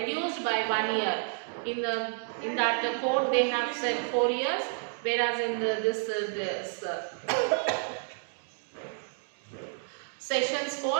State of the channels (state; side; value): silent; left; 58 dB below the other